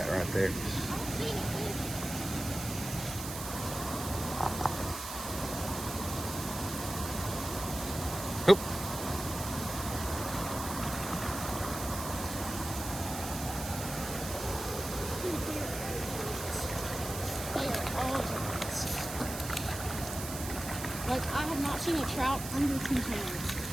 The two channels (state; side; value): noise; right; hiss, 8 dB below the sound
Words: right there. Oop. Like, I have not seen a trout under 2 pounds.